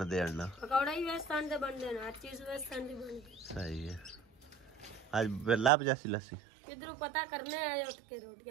हैं ना पकौड़े ही बेसन दे बनदे ने हर चीज बेसन दी बनदी। सही है आज लाभ जैसी लस्सी किधरों पता करने आए उठ के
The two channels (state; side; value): drops out; left; at 5.7 s